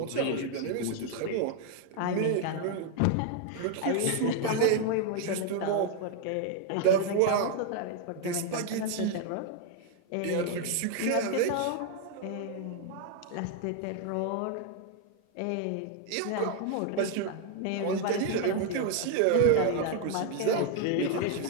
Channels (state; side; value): different; both; correlation 0.01